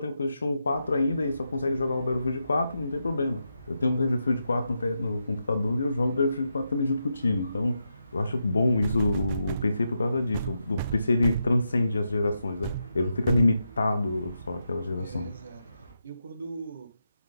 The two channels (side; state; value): both; inverted; correlation -0.85